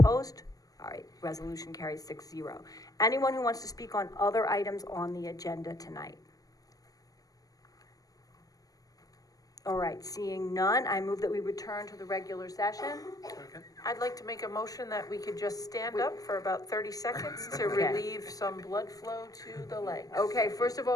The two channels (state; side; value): late; right; 0.17 ms